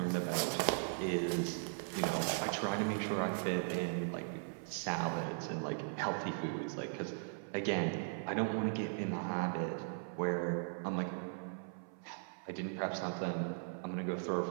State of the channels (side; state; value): left; silent; 52 dB below the other